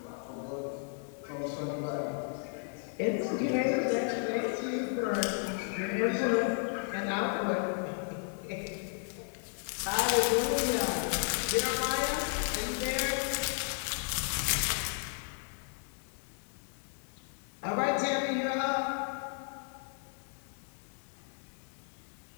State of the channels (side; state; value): right; silent; 55 dB below the other